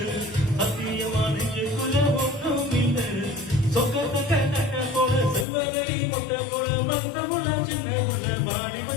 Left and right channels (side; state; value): right; drops out; at 5.5 s